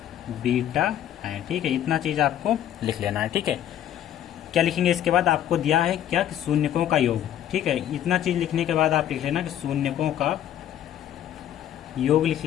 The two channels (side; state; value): right; quieter; 11.0 dB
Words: बीटा हैं, ठीक है। इतना चीज़ आपको लिख लेना है, ठीक है। क्या लिखेंगे इसके बाद, आपको दिया है क्या कि शून्यकों का योग, ठीक है। इतना चीज़ लिखने के बाद आप लिख लेना कि शून्यकों का योग लिख